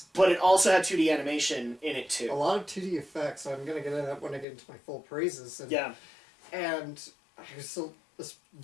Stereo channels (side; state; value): right; drops out; at 4.5 s